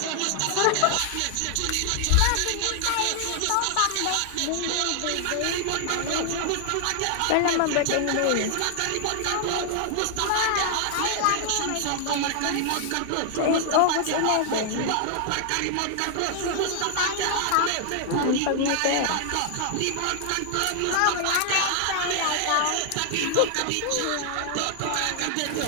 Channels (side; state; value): both; different; correlation 0.00